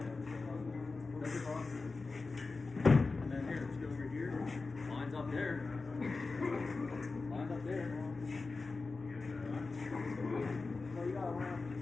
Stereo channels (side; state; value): right; quieter; 3.9 dB